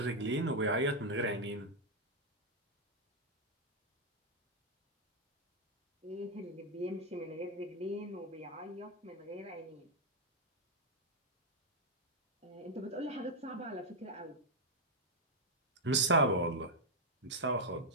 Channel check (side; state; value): both; normal; correlation -0.02